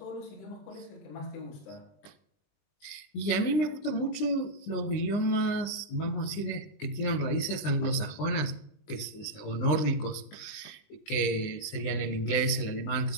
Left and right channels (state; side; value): late; right; 20 ms